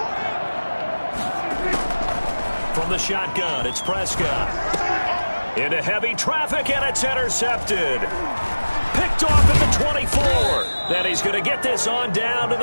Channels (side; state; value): both; inverted; correlation -1.00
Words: From the shotgun, it's Prescott. Into heavy traffic, and it's intercepted. Picked off at the 24. Then he's going to get this on down to